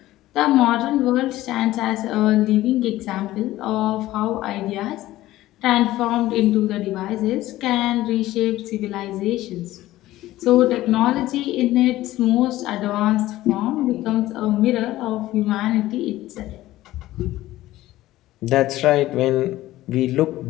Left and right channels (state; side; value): quieter; right; 15.9 dB